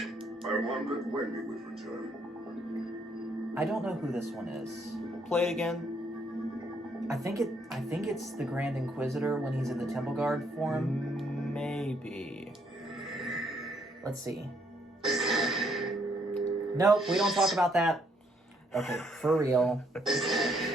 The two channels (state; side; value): normal; both; correlation 0.70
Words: I wondered when you would return. I don't know who this one is. Play it again. I think it's the Grand Inquisitor when he's in the Temple Guard form. Maybe. Let's see. Nope, we don't talk about that. Okay, for real.